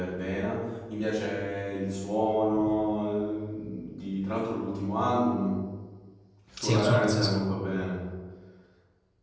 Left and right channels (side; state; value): both; identical; correlation 1.00